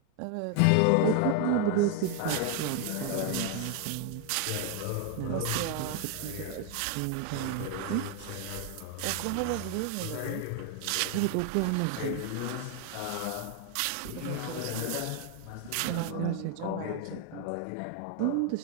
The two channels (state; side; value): different; both; correlation 0.01